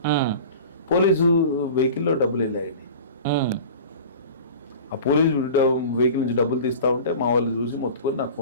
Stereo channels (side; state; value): both; inverted; correlation -0.38